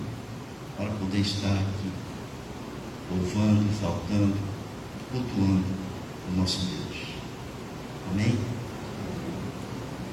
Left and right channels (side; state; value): both; identical; correlation 1.00